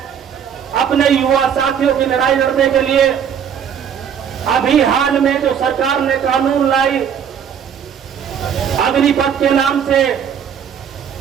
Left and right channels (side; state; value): left; quieter; 8.1 dB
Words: अपने युवा साथियों की लड़ाई लड़ने के लिए, अभी हाल में जो सरकार ने कानून लाई अग्निपथ के नाम से,